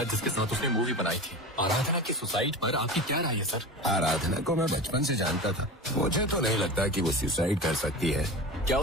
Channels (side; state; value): both; normal; correlation 0.30